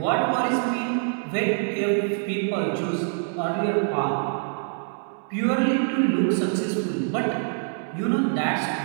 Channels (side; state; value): left; silent; 62 dB below the other